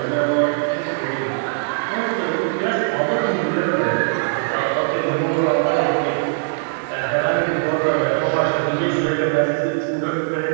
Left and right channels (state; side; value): silent; left; digital silence